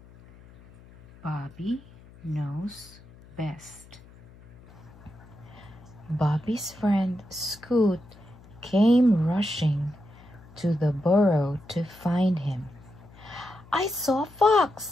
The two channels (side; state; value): left; noise; hum, 22 dB below the sound